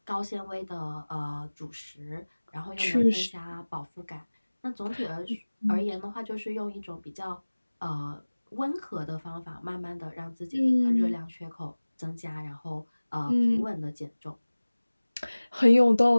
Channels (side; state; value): both; inverted; correlation -1.00